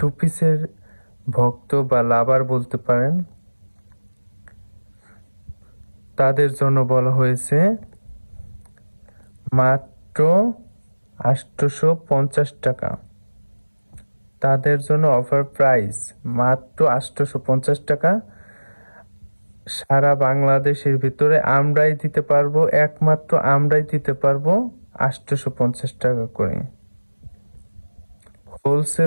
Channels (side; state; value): both; inverted; correlation -1.00